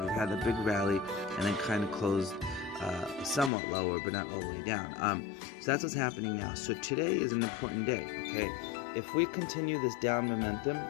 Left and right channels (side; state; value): right; drops out; at 3.5 s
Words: had the big rally, and then kind of closed somewhat lower, but not all the way down. So that's what's happening now. So today is an important day, okay? If we continue this down momentum,